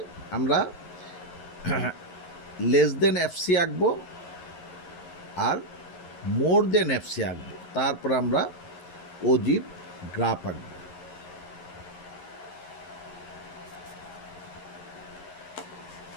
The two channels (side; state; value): right; late; 11 ms